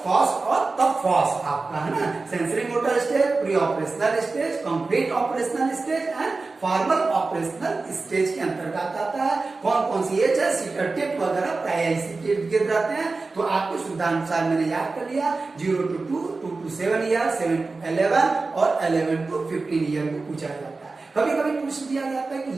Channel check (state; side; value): quieter; left; 3.8 dB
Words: और तब फॉस आपका, है ना, sensory motor stage, pre operational stage, complete operational stage and formal operational stage के अंतर्गत आता है। कौन कौन सी एज है, सीटेट वगैरह प्राय इसी के इर्द गिर्द रहते हैं। तो आपकी सुविधा अनुसार मैंने याद कर लिया, 0 to 2, 2 to 7 ईयर, 7 to 11 और 11 to 15 ईयर को पूछा जाता है। कभी कभी पूछ दिया जाता है